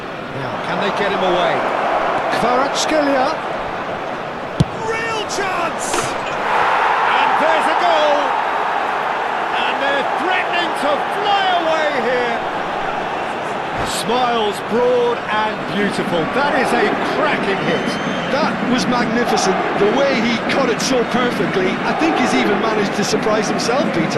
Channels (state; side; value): identical; both; correlation 1.00